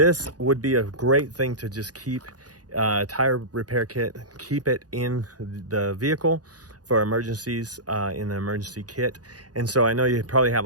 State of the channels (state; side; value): late; left; 0.68 ms